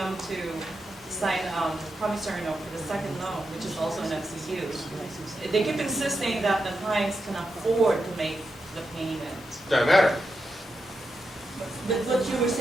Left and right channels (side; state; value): both; normal; correlation 0.87